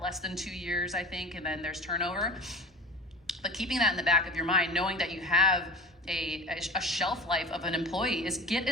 less than 2 years, I think, and then there's turnover. But keeping that in the back of your mind, knowing that you have a shelf life of an employee, is get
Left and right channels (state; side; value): normal; both; correlation 0.33